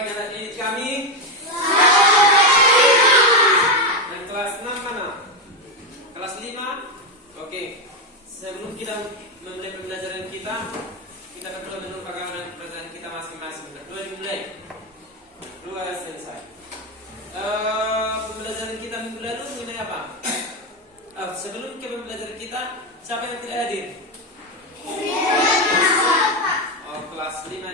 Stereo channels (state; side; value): normal; both; correlation 0.09